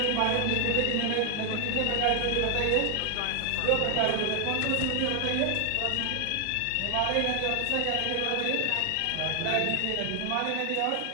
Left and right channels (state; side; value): different; both; correlation 0.00